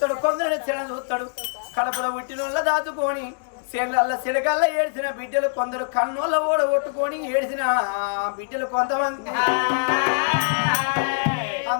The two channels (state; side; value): silent; right; digital silence